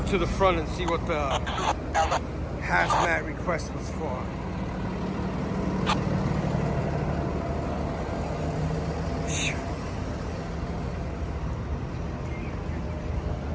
to the front and see what the hazmat request was for.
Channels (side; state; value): both; identical; correlation 1.00